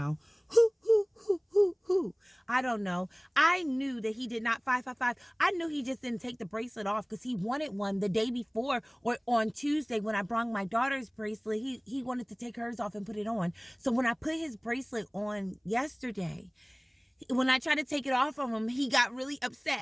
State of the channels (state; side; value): identical; both; correlation 1.00